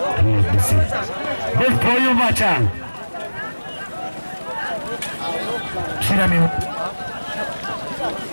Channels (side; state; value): both; inverted; correlation -1.00